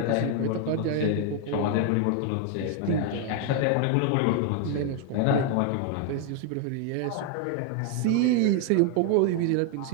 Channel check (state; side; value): different; both; correlation 0.01